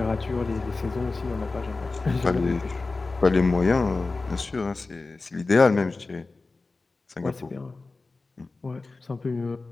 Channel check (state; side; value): quieter; right; 3.6 dB